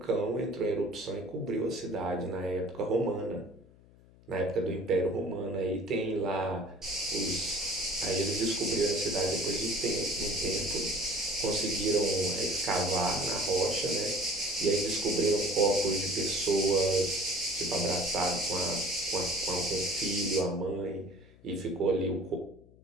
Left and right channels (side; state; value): left; noise; hum, 25 dB below the sound